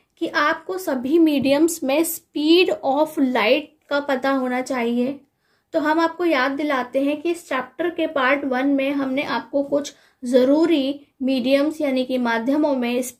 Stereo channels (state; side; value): identical; both; correlation 1.00